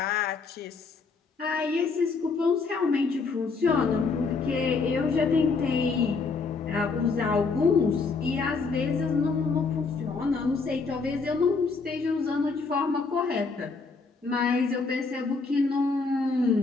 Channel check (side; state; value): right; quieter; 4.5 dB